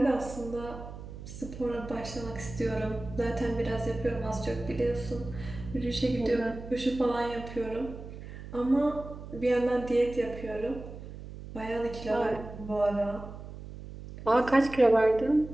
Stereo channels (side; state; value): right; noise; hum, 12 dB below the sound